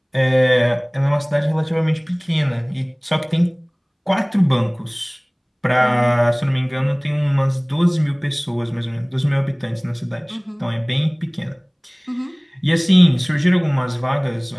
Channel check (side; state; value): both; identical; correlation 1.00